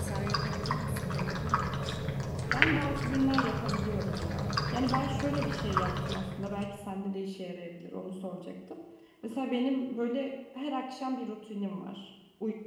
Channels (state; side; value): identical; both; correlation 1.00